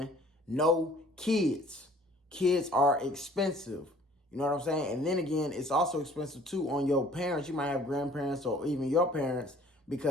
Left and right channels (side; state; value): both; normal; correlation 0.54